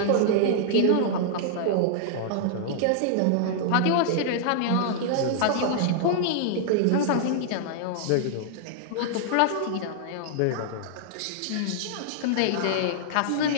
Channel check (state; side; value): different; both; correlation -0.01